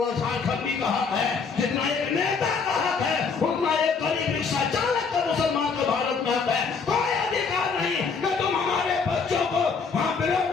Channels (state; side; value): quieter; right; 5.3 dB